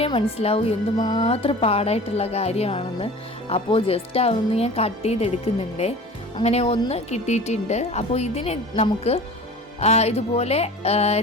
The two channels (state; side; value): normal; both; correlation 0.39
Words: മനസ്സിലാവും എന്തുമാത്രം പാടായിട്ടുള്ള കാര്യമാണെന്ന്. അപ്പോൾ ജസ്റ്റ് അതൊന്ന് ഞാൻ കട്ട് ചെയ്തെടുക്കുന്നുണ്ട്. അങ്ങനെ ഒന്ന് കിട്ടിയിട്ടുണ്ട്. അപ്പോൾ ഇതിന് നമുക്ക് ഇതുപോലെ